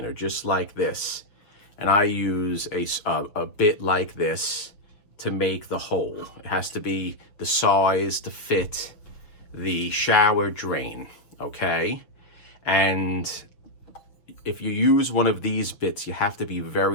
just like this. And I use a bit like this to make the hole. It has to be the size to fit the shower drain, okay? And if you use one of these bits, you have to be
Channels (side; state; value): right; late; 6.5 ms